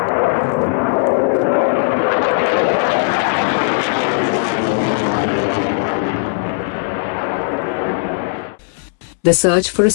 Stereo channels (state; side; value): silent; right; 67 dB below the other